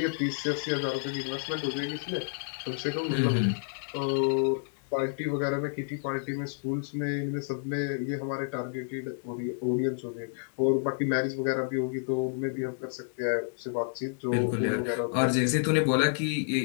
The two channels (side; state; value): right; silent; digital silence